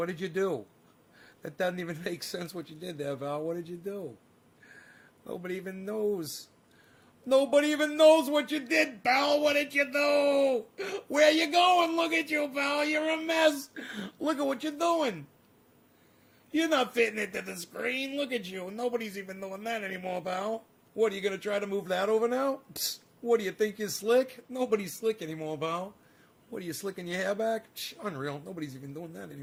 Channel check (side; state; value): both; identical; correlation 1.00